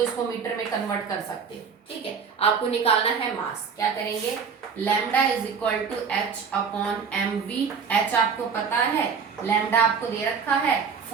इसको मीटर में कन्वर्ट कर सकते हो। ठीक है, आपको निकालना है मास, क्या करेंगे, lambda is equal to h/mv, h आपको पता है, लैम्डा आपको दे रखा है,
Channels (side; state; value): left; quieter; 6.1 dB